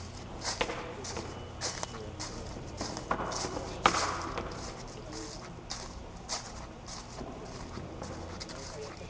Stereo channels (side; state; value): both; identical; correlation 1.00